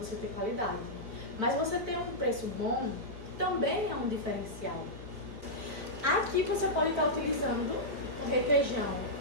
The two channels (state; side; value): late; left; 4.7 ms